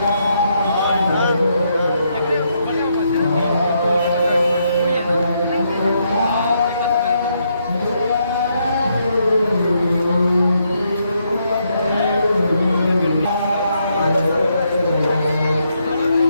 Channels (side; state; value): both; inverted; correlation -0.77